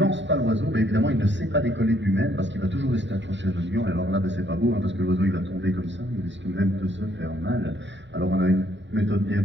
pas l'oiseau, ben, évidemment il ne sait pas décoller de lui-même parce qu'il va toujours rester accroché à notre gant. Et alors là ben, c'est pas beau, hein, parce que l'oiseau il va tomber comme ça, il risque même de se faire mal. Alors on a une méthode bien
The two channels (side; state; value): left; late; 0.53 ms